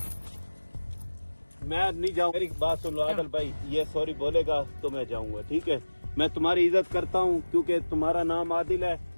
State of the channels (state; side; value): inverted; both; correlation -1.00